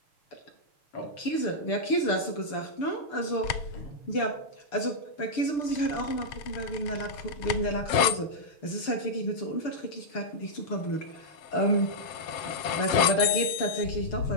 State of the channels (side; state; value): right; late; 6.8 ms